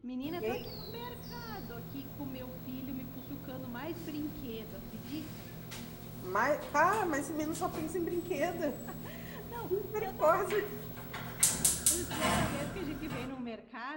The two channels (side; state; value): both; identical; correlation 1.00